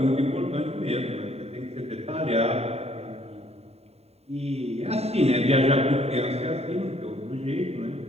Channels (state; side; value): late; left; 0.30 ms